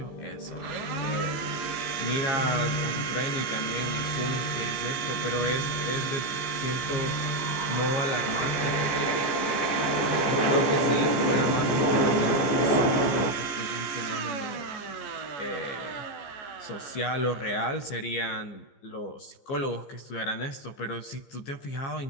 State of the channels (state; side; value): late; right; 14 ms